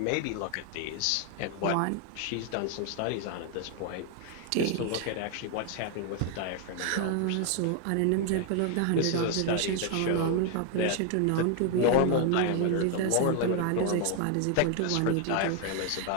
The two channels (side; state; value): both; different; correlation 0.00